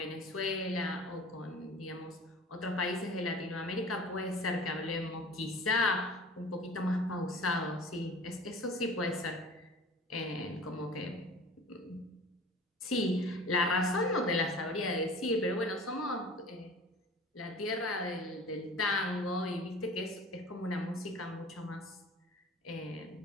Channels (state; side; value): normal; both; correlation 0.42